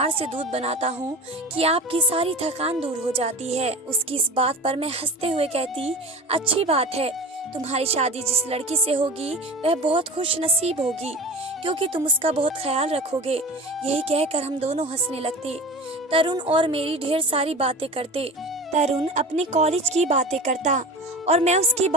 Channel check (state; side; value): normal; both; correlation 0.33